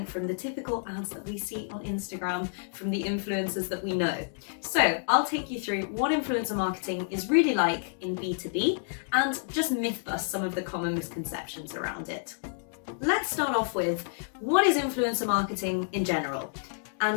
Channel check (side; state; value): right; silent; 58 dB below the other